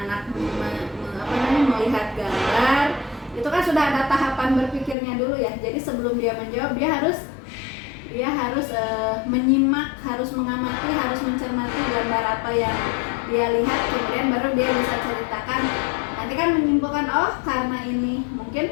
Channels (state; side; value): drops out; right; at 5.0 s